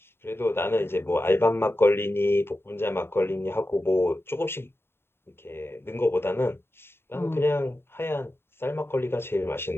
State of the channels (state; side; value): late; right; 0.11 ms